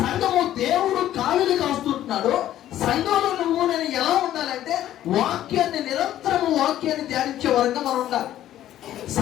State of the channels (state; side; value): quieter; right; 12.5 dB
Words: సంఘము దేవుడు కావిలి కాస్తుంటున్నాడు. సంఘంలో నువ్వు నేను ఎలా ఉండాలంటే వాక్యాన్ని నిరంతరము వాక్యాన్ని ధ్యానించే వరంగా మనం ఉండాలి.